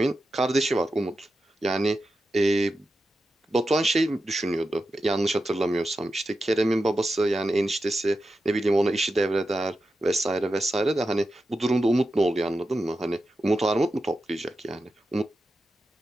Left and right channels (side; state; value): both; normal; correlation 0.90